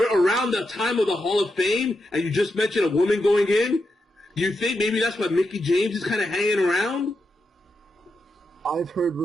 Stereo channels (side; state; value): both; normal; correlation 0.85